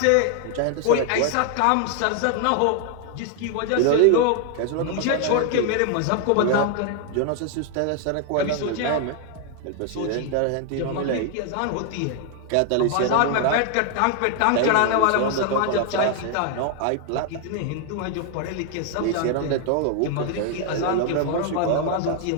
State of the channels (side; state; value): both; different; correlation 0.00